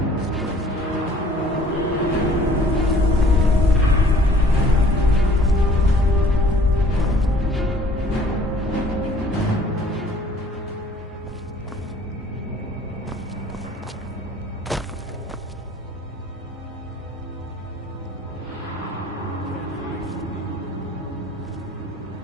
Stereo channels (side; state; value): both; normal; correlation 0.54